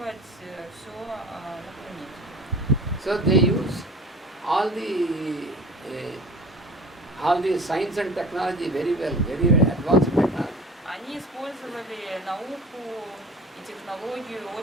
все на планете. So they use all the science and technology very well, very advanced technology. Они использовали науку и технологию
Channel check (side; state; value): both; normal; correlation 0.41